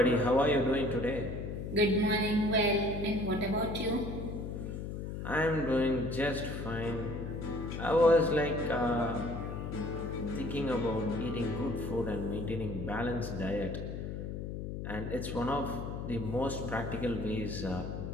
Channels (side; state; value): left; noise; hum, 5 dB below the sound